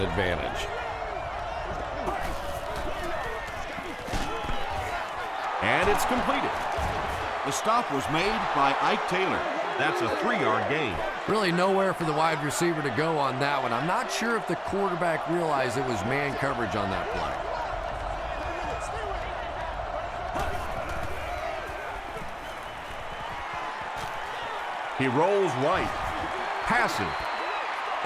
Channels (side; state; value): both; identical; correlation 1.00